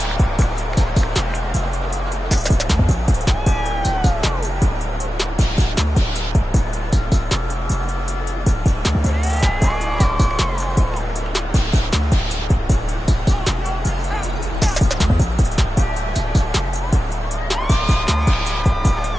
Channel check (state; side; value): normal; both; correlation 0.93